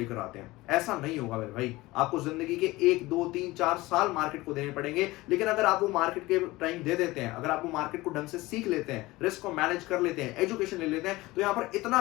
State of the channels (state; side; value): quieter; right; 19.8 dB